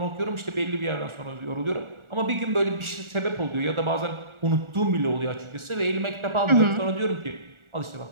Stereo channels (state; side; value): late; left; 1.4 ms